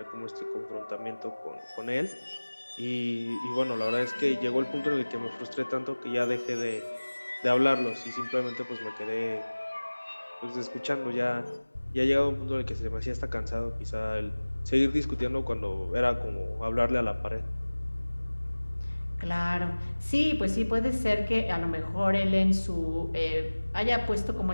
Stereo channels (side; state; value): both; inverted; correlation -1.00